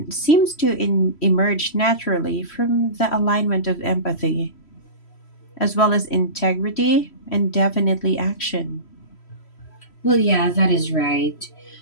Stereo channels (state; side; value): late; right; 3.1 ms